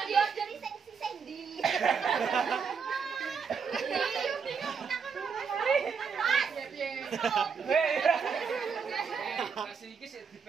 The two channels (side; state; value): left; quieter; 5.9 dB